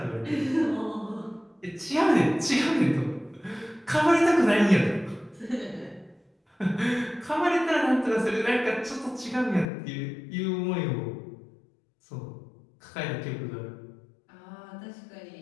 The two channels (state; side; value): drops out; right; at 9.7 s